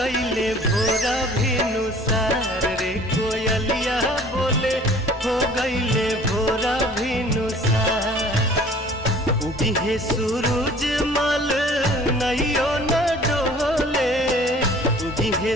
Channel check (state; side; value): normal; both; correlation 0.50